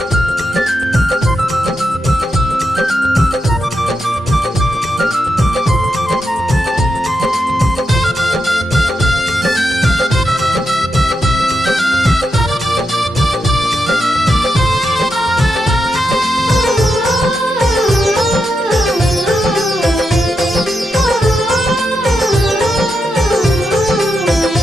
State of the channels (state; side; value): normal; both; correlation 0.85